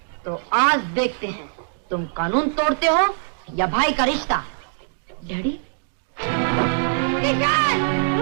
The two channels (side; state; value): left; silent; digital silence